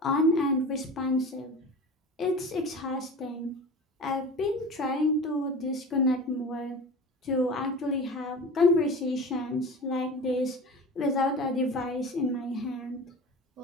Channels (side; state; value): both; normal; correlation 0.35